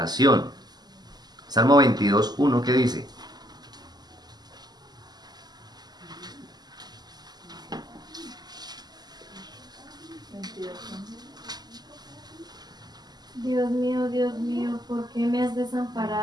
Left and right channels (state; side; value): late; left; 0.20 ms